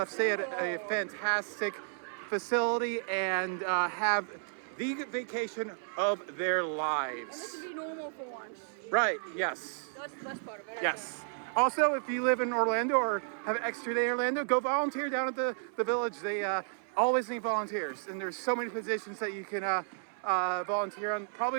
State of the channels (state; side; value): silent; left; 56 dB below the other